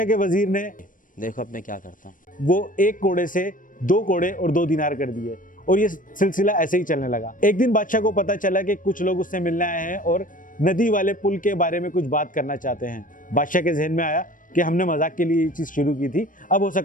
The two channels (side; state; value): right; late; 0.39 ms